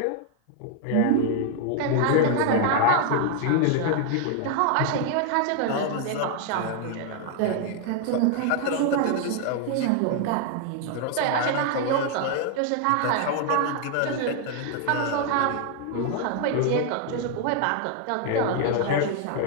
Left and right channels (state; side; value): different; both; correlation 0.00